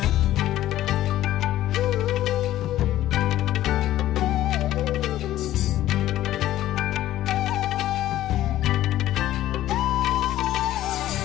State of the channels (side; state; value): right; quieter; 13.8 dB